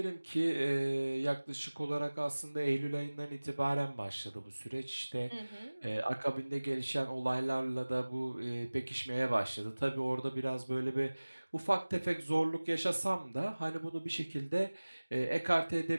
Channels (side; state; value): both; inverted; correlation -1.00